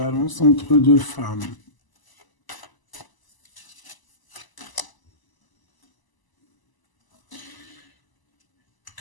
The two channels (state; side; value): late; right; 1.0 ms